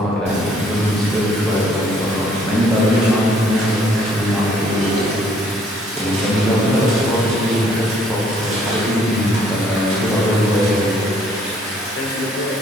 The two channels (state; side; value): normal; both; correlation 0.63